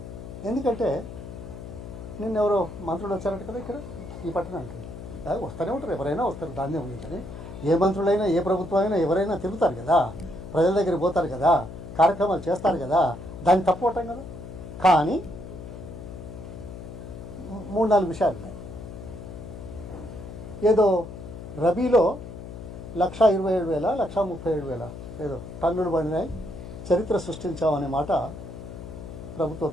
ఎందుకంటే నిన్న ఎవరో మంత్రులు వచ్చారంట కదా ఇక్కడ ఈ పట్టణానికి. వస్తూనే ఉంటారు, ఎవరైనా వస్తారు, దాన్నే ఉంది. కానీ ఏ మంత్రులైనా ఏ ప్రభుత్వం అయినా ఎవరైనా తిరుగుతారు కదా, ప్రజల దగ్గరికి పోతారు కదా, కార్యక్రమాలు చేస్తారు కదా, దాన్ని తప్పుకోవటం కదా. కానీ 3-4 విషయాలు ఉన్నాయి. ఏదో రబీలో 1,27,000 1,37,000 ఏదో టన్నులు పడినాయి, చరిత్ర సృష్టించామనే మాట ప్రభుత్వ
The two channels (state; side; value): noise; left; hum, 11 dB below the sound